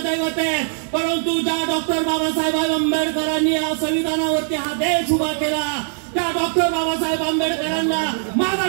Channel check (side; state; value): left; silent; 58 dB below the other